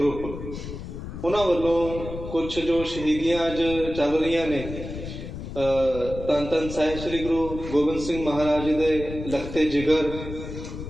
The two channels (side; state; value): left; noise; rumble, 9 dB below the sound